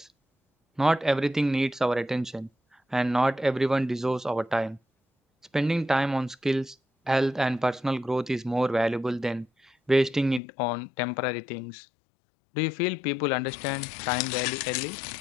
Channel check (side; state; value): right; drops out; at 10.4 s